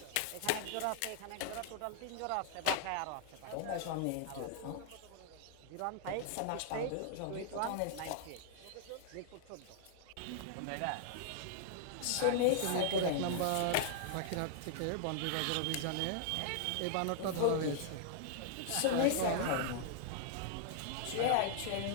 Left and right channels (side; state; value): both; different; correlation -0.01